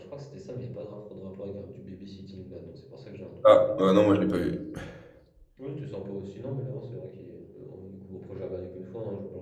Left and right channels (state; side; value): identical; both; correlation 1.00